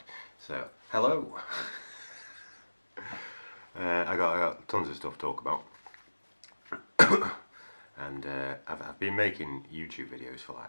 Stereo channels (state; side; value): inverted; both; correlation -1.00